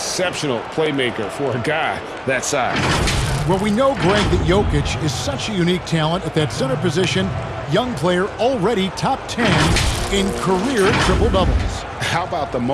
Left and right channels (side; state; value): both; identical; correlation 1.00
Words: playmaker for a guy that size. Well, we know, Greg, that Jokic is such a unique talent at that center position. Young player, already top 10 in career triple-doubles. How about the